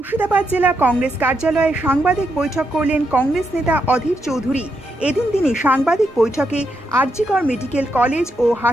জেলা কংগ্রেস কার্যালয়ে সাংবাদিক বৈঠক করলেন কংগ্রেস নেতা অধীর চৌধুরী। এদিন তিনি সাংবাদিক বৈঠকে আরজিকর মেডিকেল কলেজ ও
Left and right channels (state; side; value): normal; both; correlation 0.81